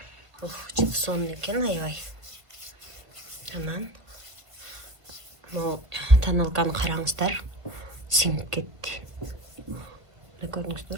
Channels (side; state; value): left; late; 1.6 ms